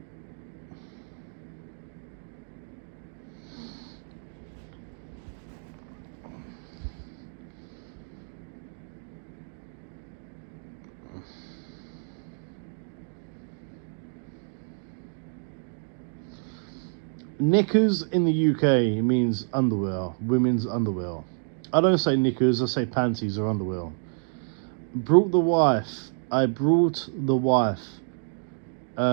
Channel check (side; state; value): left; silent; 58 dB below the other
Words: Knickers in the UK means underwear, women's underwear. I don't say knickers, I say panties or underwear. Brought the wife. I brought the wife